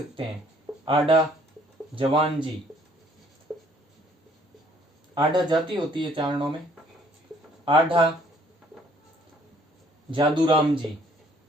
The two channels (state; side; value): normal; both; correlation 0.61